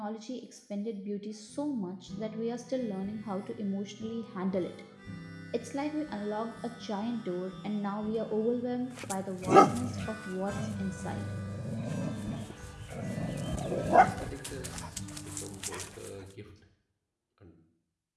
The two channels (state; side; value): identical; both; correlation 1.00